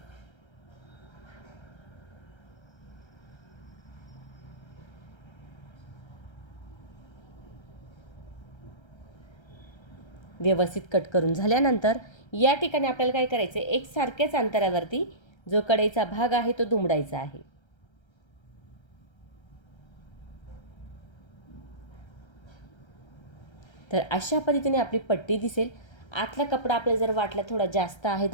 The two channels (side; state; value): right; late; 1.3 ms